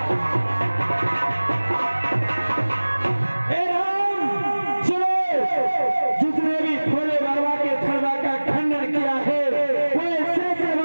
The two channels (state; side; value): inverted; both; correlation -1.00